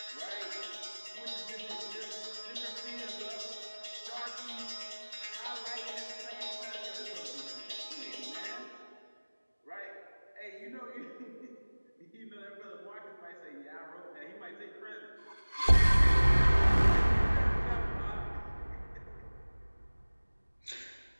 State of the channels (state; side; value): inverted; both; correlation -1.00